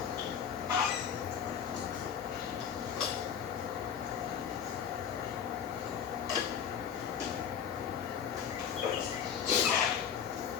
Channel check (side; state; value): right; quieter; 8.0 dB